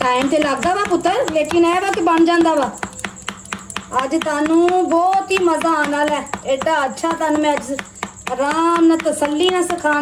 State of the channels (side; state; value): both; identical; correlation 1.00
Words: टाइम ते लगदा वा पुत्तर लेकिन ए वा कि बन जांदा वा। अज तुहानू बहुत ही मज़ा आने वाला है। एडा अच्छा तुहानू मैं अज आराम नाल तसल्ली नाल